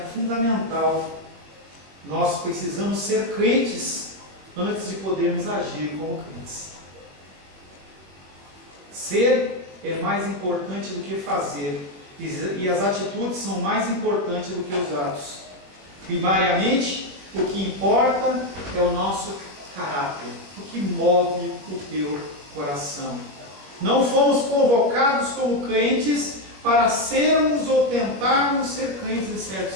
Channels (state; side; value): late; left; 21 ms